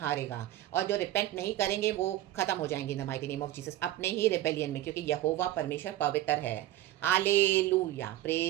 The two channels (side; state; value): left; quieter; 14.3 dB